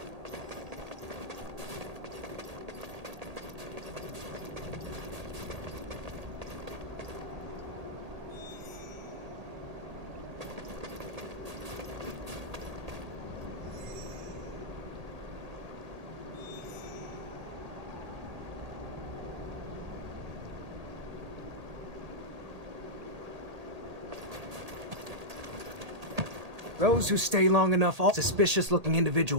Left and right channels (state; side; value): late; left; 1.8 ms